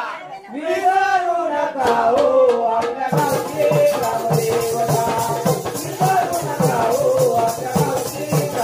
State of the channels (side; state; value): both; identical; correlation 1.00